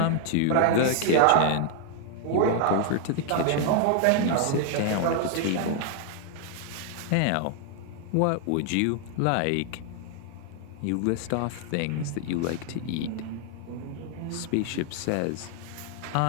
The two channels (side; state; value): both; different; correlation 0.00